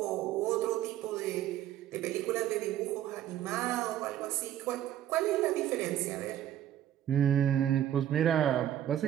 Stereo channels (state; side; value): quieter; left; 11.6 dB